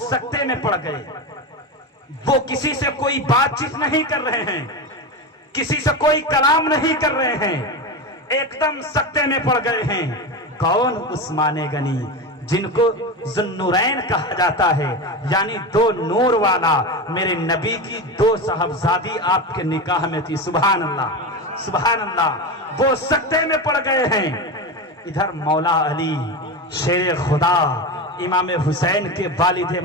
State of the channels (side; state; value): both; normal; correlation 0.20